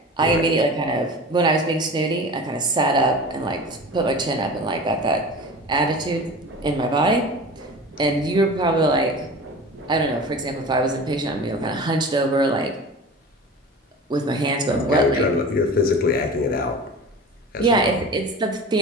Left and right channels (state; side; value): normal; both; correlation 0.35